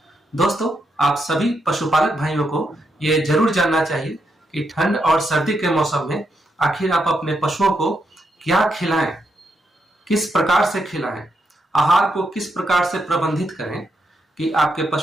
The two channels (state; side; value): normal; both; correlation 0.81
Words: दोस्तों आप सभी पशुपालक भाइयों को ये जरूर जानना चाहिए कि ठंड और सर्दी के मौसम में आखिर आप अपने पशुओं को क्या खिलाएं, किस प्रकार से खिलाएं, आहार को किस प्रकार से प्रबंधित करें कि आपके